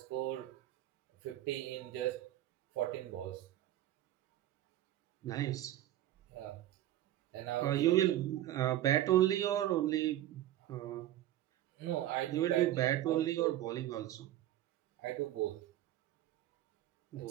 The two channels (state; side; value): quieter; left; 13.4 dB